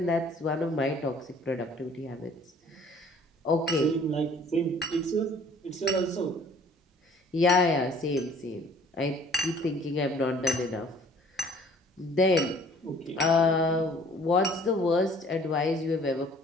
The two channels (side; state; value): both; normal; correlation 0.54